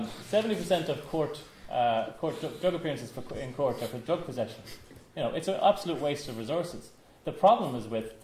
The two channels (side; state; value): both; identical; correlation 1.00